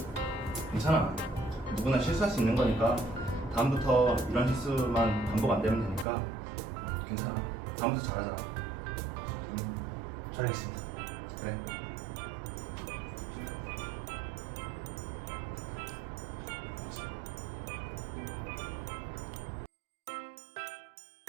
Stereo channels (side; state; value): left; drops out; at 6.1 s